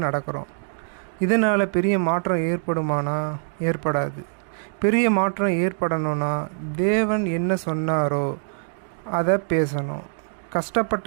நடக்கிறோம். இதனால் பெரிய மாற்றம் ஏற்படுமானா? ஏற்படாது. பெரிய மாற்றம் ஏற்படணும்னா தேவன் என்ன சொன்னாரோ அதை பேசணும்.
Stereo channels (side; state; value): left; silent; 58 dB below the other